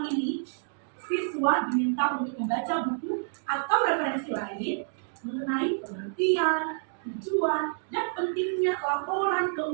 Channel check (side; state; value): left; silent; digital silence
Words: ini, siswa diminta untuk membaca buku atau referensi lain mengenai pengertian, tujuan, dan pentingnya laporan